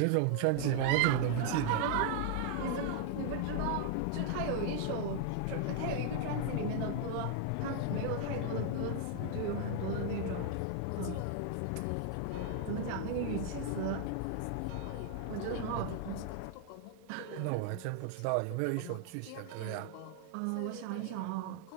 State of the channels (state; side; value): different; both; correlation 0.00